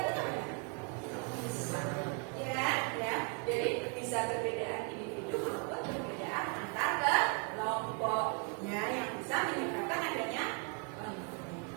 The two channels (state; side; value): quieter; left; 35.5 dB